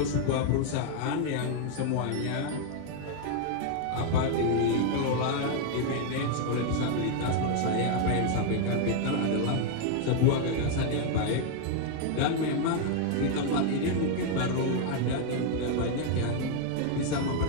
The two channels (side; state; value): both; different; correlation 0.00